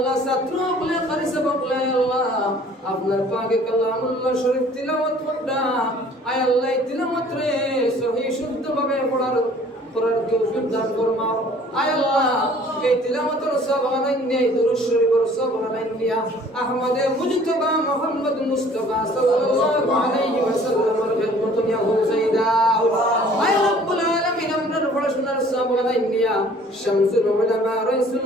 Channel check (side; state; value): both; normal; correlation 0.53